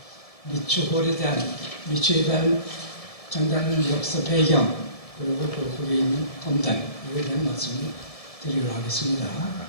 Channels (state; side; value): late; right; 1.7 ms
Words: 미추홀에 대한 미추에 대한 장단의 역사 배경 그리고 거기에 있는 검단 이에 대한 말씀을 드리도록 하겠습니다.